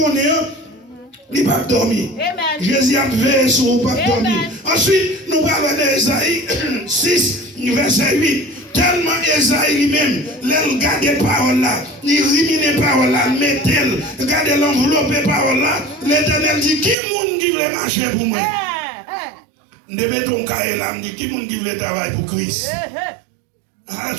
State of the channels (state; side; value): drops out; left; at 16.9 s